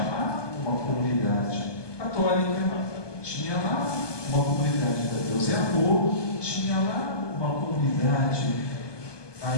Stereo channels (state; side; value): late; right; 1.2 ms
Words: lá uma comunidade católica, tinha lá uma comunidade da Deus é Amor, tinha lá uma comunidade,